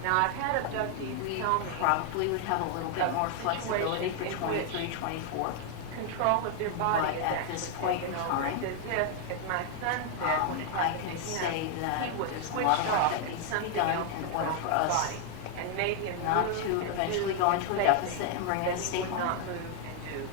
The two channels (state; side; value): different; both; correlation 0.00